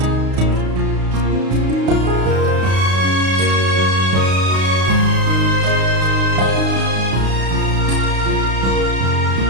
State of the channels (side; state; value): left; late; 32 ms